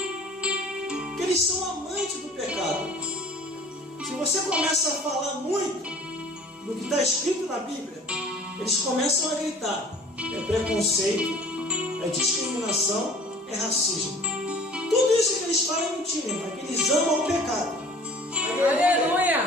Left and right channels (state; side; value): normal; both; correlation 0.47